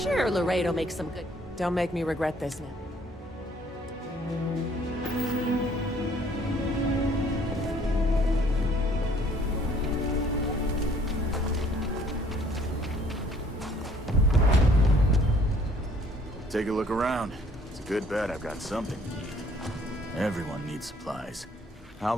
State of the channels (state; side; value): normal; both; correlation 0.60